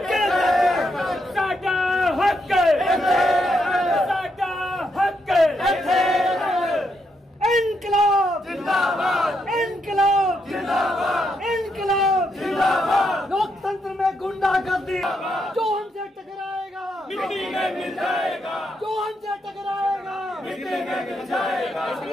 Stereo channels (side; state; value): both; normal; correlation 0.79